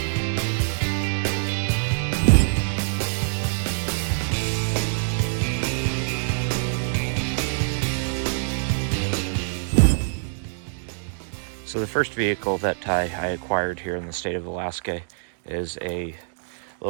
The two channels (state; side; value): silent; left; digital silence